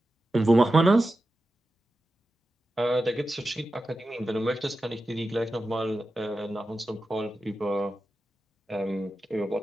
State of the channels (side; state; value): both; normal; correlation 0.92